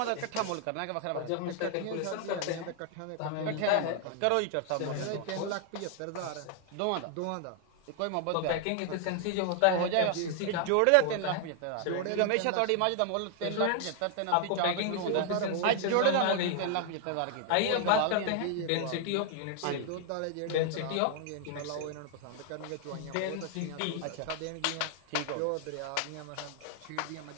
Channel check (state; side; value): different; both; correlation 0.00